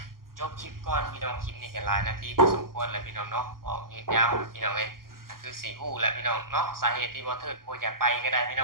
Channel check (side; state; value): left; late; 0.92 ms